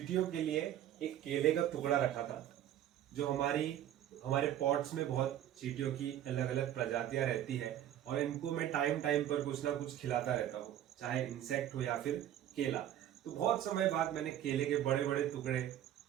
के लिए एक केले का टुकड़ा रखा था। जो हमारे पॉट्स में बहुत चींटियों की अलग अलग प्रजातियां रहती है और इनको मैं टाइम टाइम पर कुछ ना कुछ खिलाता रहता हूँ, चाहे इंसेक्ट हो या फिर केला। तो बहुत समय बाद मैंने केले के बड़े बड़े टुकड़े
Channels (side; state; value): left; quieter; 11.5 dB